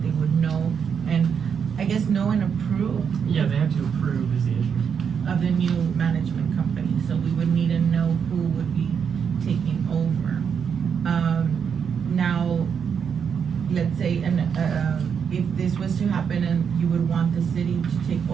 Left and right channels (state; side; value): quieter; left; 7.0 dB